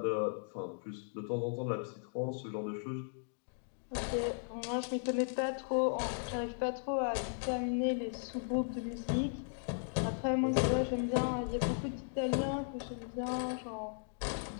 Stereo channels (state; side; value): silent; right; digital silence